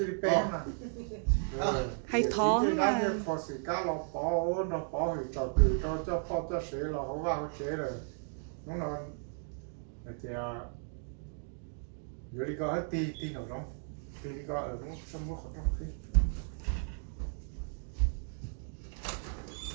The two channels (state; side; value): silent; left; 55 dB below the other